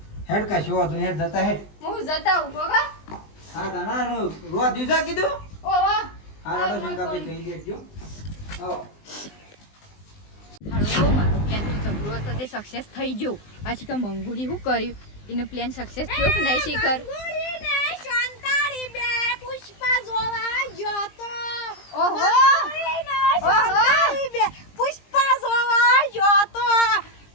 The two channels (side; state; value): right; late; 20 ms